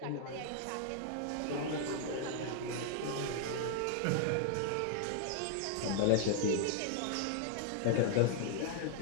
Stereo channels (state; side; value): different; both; correlation 0.00